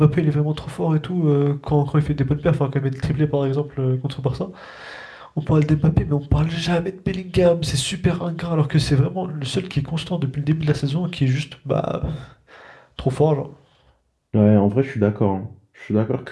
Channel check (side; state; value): both; identical; correlation 1.00